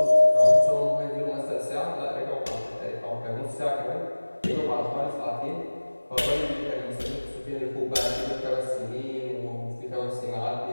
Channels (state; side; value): inverted; both; correlation -1.00